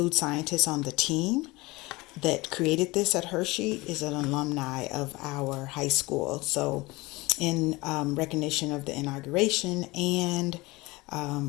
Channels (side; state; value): right; quieter; 22.4 dB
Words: scientist on the team that created this at Hershey is an alumni of our high school. So in recognition of the inauguration and